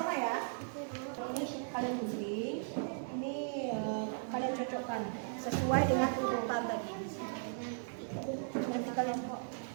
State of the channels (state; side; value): silent; left; digital silence